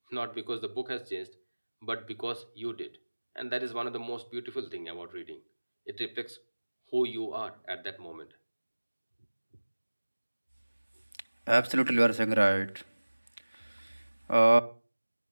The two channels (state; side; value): inverted; both; correlation -1.00